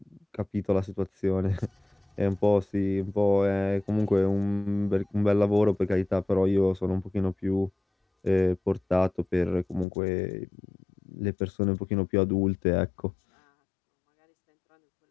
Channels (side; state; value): right; drops out; at 9.9 s